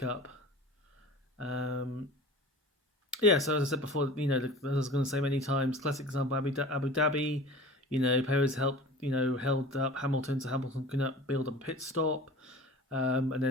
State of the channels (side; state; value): both; normal; correlation 0.40